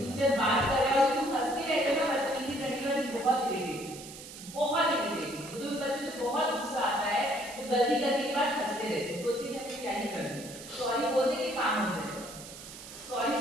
जब बात कर रहे हो तुम हंसते रहते हो ना, बदतमीजी करने वाले बहुत इरिटेटिंग, बहुत इरिटेटिंग। मुझे उन बच्चों से बहुत गुस्सा आता है जो गलती करने के बाद हंसते रहते हैं, सोचते हैं कि क्या ही करना, सॉरी बोलते के काम हो जाएगा। सॉरी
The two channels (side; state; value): right; noise; hiss, 14 dB below the sound